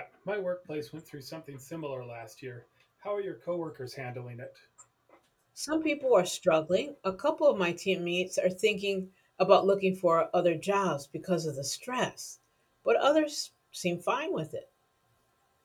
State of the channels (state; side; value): identical; both; correlation 1.00